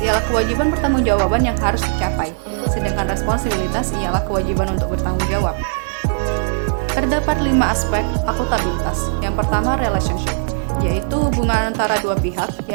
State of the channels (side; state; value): left; silent; digital silence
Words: ialah kewajiban pertanggungjawaban yang harus dicapai, sedangkan responsibilitas ialah kewajiban untuk bertanggung jawab. Terdapat 5 aspek akuntabilitas. Yang pertama, relationship, yaitu hubungan antara dua pihak,